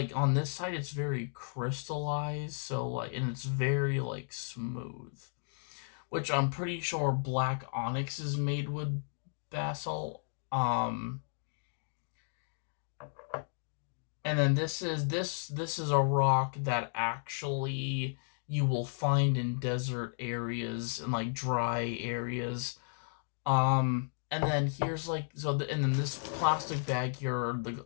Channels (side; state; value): right; silent; digital silence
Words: on this side it's very crystallized, so like, and it's very like smooth, which I'm pretty sure black onyx is made with basalt. And then this is a rock that actually you will find in desert areas and like dry areas. And then here's like and then this plastic bag here are the